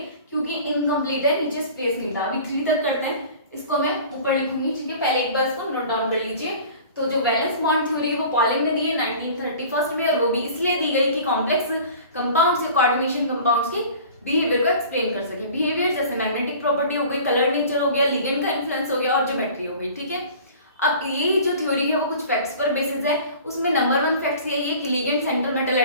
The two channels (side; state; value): both; inverted; correlation -0.43